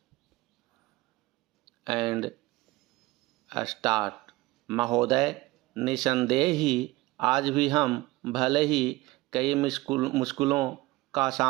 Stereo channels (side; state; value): left; quieter; 20.2 dB